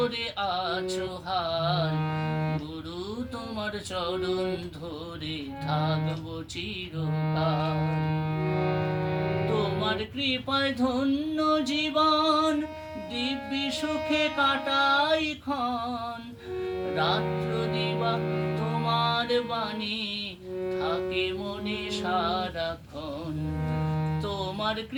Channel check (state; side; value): identical; both; correlation 1.00